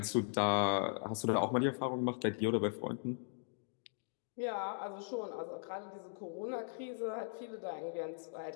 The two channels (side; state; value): right; silent; digital silence